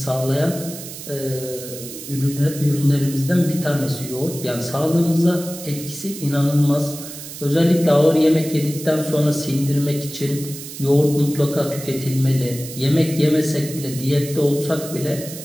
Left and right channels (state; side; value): noise; right; hiss, 12 dB below the sound